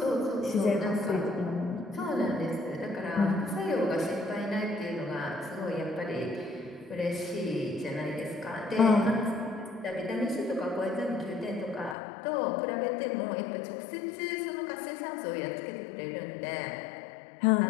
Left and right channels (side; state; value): right; drops out; at 12.0 s